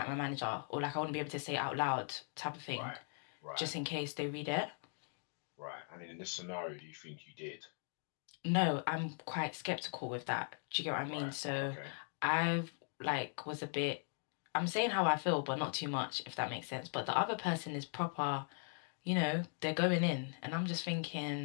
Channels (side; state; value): right; silent; 51 dB below the other